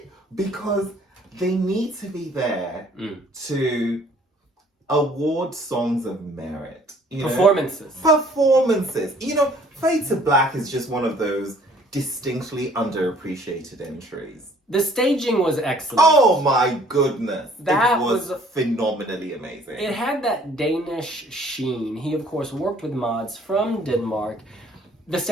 Because they need to be there to award songs of merit. Performances. Fade to Black is just one of those distinctly underappreciated entries. The staging was excellent. Oh my goodness. That it was phenomenally amazing. It had that Danish sheen. He, of course, worked with mods from Denmark. The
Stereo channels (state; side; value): normal; both; correlation 0.57